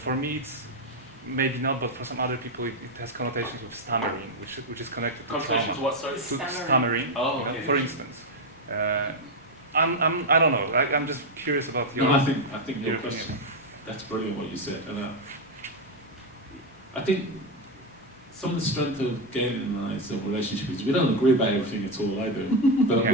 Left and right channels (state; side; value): normal; both; correlation 0.05